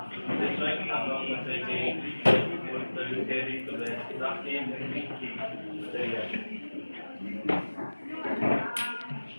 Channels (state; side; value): inverted; both; correlation -1.00